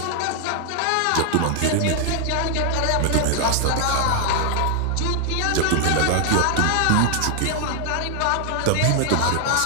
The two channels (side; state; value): both; different; correlation 0.00